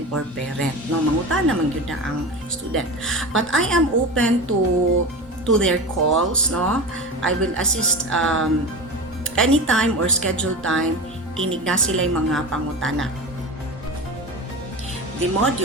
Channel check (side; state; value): both; normal; correlation 0.27